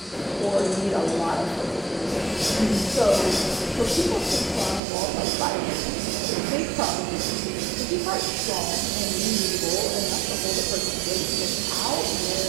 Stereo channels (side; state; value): left; drops out; at 4.8 s